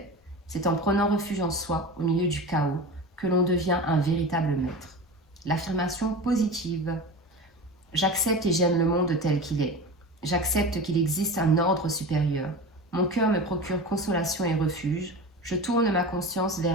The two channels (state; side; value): normal; both; correlation 0.30